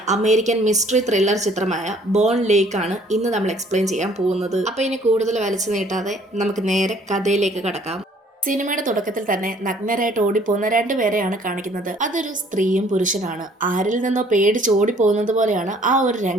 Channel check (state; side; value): normal; both; correlation 0.58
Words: അമേരിക്കൻ മിസ്റ്ററി ത്രില്ലർ ചിത്രമായ ബോൺ ലേക്ക് ആണ് ഇന്ന് നമ്മൾ എക്സ്പ്ലെയിൻ ചെയ്യാൻ പോകുന്നത്. അപ്പൊ ഇനി കൂടുതൽ വലിച്ചു നീട്ടാതെ നമുക്ക് നേരെ കഥയിലേക്ക് കടക്കാം. സിനിമയുടെ തുടക്കത്തിൽ തന്നെ നഗ്നരായിട്ട് ഓടിപ്പോകുന്ന രണ്ടുപേരെയാണ് കാണിക്കുന്നത്. അതൊരു സ്ത്രീയും പുരുഷനാണ്. ആരിൽ നിന്നോ പേടിച്ച് ഓടിപ്പോകുന്നത് പോലെയാണ് ആ ഒരു